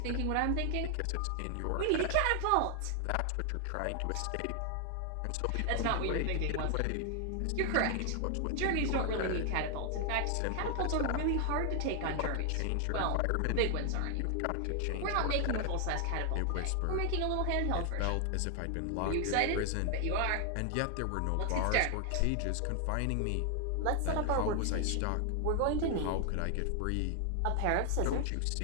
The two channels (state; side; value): different; both; correlation 0.00